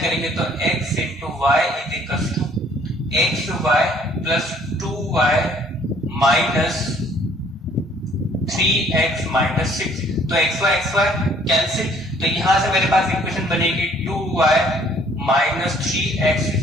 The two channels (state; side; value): normal; both; correlation 0.59